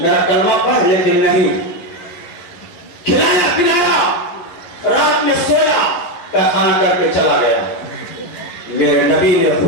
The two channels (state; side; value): late; right; 11 ms